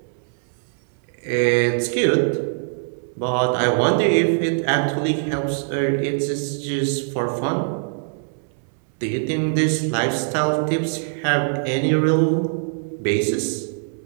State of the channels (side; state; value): left; silent; 64 dB below the other